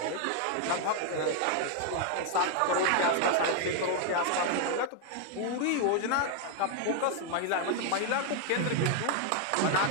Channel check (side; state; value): both; different; correlation 0.00